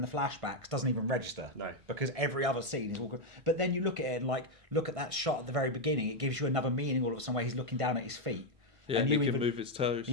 the flashbacks doesn't even register. No, because every other scene is walking. But then you look at it and look at that shot at the very beginning. It gives you another meaning all of a sudden where he's looking down at his feet. Yeah, and he can move his toes.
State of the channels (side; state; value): left; late; 1.5 ms